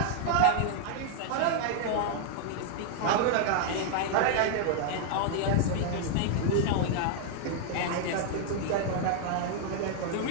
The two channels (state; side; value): different; both; correlation 0.00